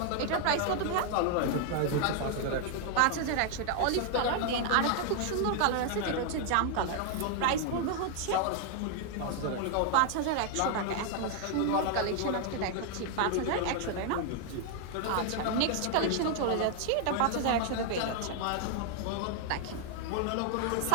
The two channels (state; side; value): different; both; correlation 0.00